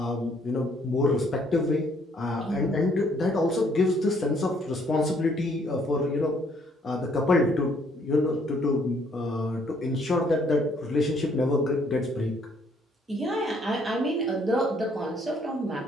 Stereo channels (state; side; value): normal; both; correlation 0.66